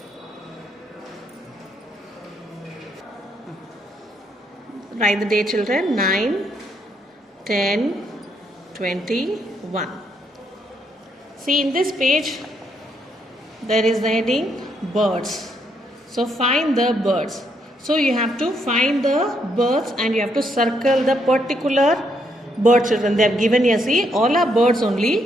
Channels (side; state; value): both; normal; correlation 0.75